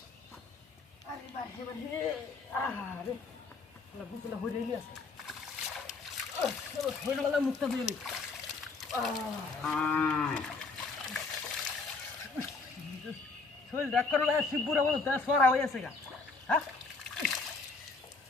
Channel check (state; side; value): quieter; right; 4.0 dB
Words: আরে বার হে আরে শালা গুসলটা হই রেলি আছে হই গেল মুতটা দিলি শরীর ডাক করলে শিবপুরা বলো তা সরা হয়ে আছে গা হ্যাঁ